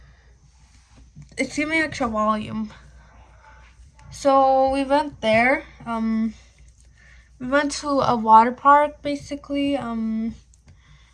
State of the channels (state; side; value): identical; both; correlation 1.00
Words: It's giving me extra volume. So we went there. We went to a water park, basically.